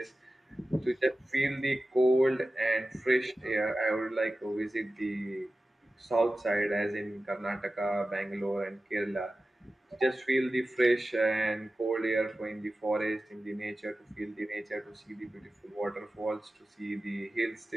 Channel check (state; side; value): normal; both; correlation 0.95